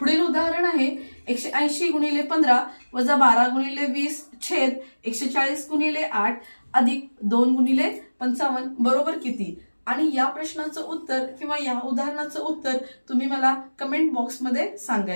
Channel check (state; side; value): inverted; both; correlation -1.00